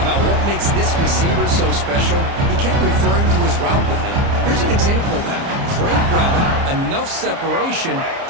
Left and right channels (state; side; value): late; left; 30 ms